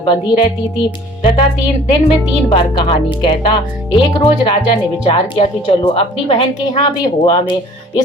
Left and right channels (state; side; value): normal; both; correlation 0.51